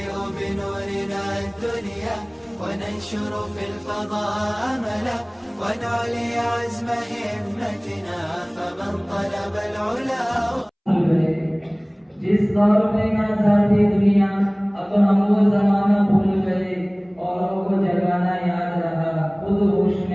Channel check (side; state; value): both; identical; correlation 1.00